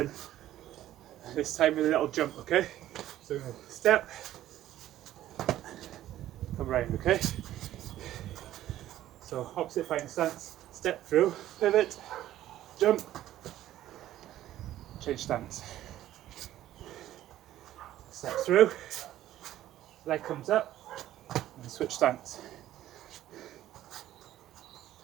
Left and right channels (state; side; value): quieter; left; 13.4 dB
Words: This time with a little jump, okay? So we're going to step, come round, okay? So opposite fighting stance, step through, pivot, jump, change stance. Step through, leg comes up, and switch stance.